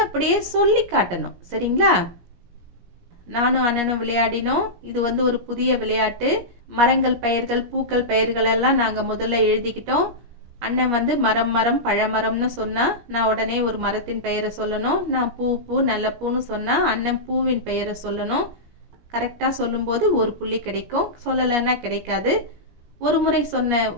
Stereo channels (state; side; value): late; left; 17 ms